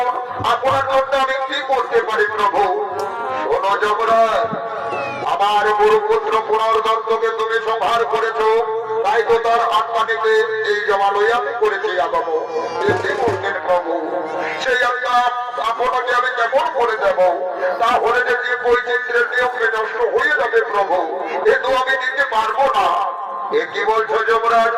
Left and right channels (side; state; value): both; identical; correlation 1.00